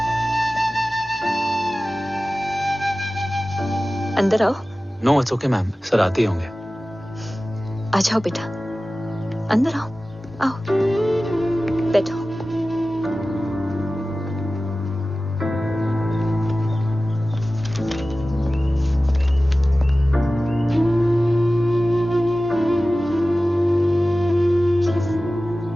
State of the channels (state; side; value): normal; both; correlation 0.96